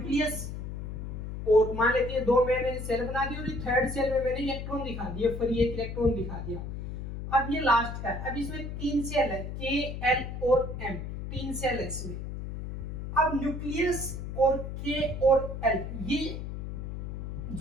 और मान लेते हैं दो मैंने सेल बना दी और थर्ड सेल में मैंने इलेक्ट्रॉन दिखा दिया, फ्री एक इलेक्ट्रॉन दिखा दिया। अब ये लास्ट का है, अब इसमें तीन सेल है, के, एल और एम, तीन सेल है इसमें। अब न्यूक्लियस और के और एल, ये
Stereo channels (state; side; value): noise; left; hum, 6 dB below the sound